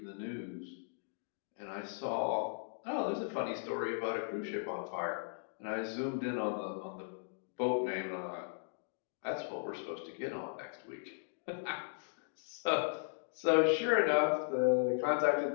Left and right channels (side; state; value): right; silent; digital silence